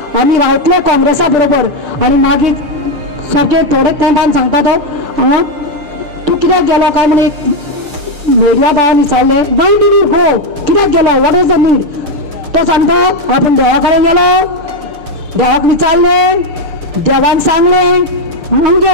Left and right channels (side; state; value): left; late; 6.7 ms